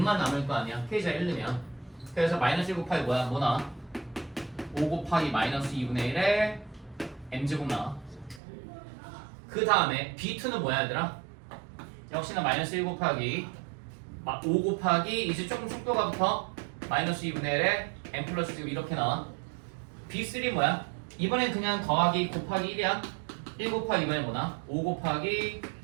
남을 거 아니야. k 자리 1 넣으면. 그래서 마이너스 1 곱하기 뭐야? 뭐 나와? 5 곱하기 마이너스 2분의 1에 m제곱 나와. 그 다음에 b2는 뭐야 얘들아? 역시나 마이너스 1 곱하기 5 곱하기 이제 조금 속도가 붙어 마이너스 2분의 1에 m 플러스 지금 이렇게 나와. b3 뭐야? 이번엔 그냥 더하기 곱하기 1이야. 1 곱하기 이번엔 뭐나? 5 곱하기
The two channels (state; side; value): drops out; left; at 8.4 s